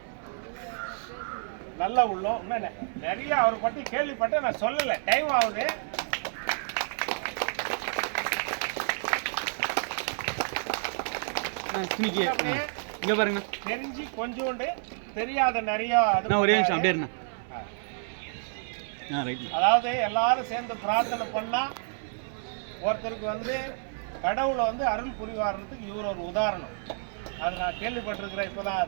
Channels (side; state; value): left; silent; 56 dB below the other